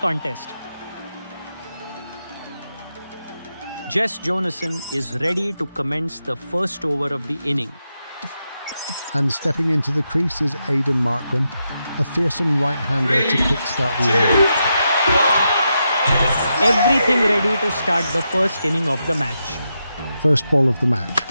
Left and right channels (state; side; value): inverted; both; correlation -0.85